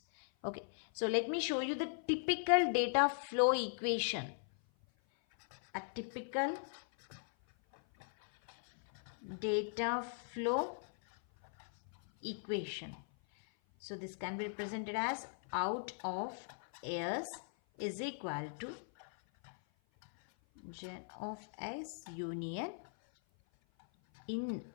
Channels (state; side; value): silent; right; 52 dB below the other